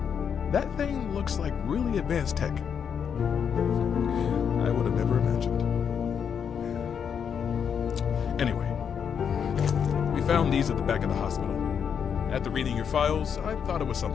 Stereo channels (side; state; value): right; quieter; 7.4 dB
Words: That thing looks like really advanced tech. I would have never imagined. Anyway, we found these at the back of the hospital. After reading your files, I thought it was